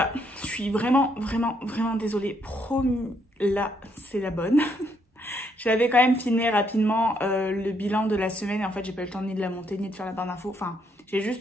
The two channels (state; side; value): normal; both; correlation 0.73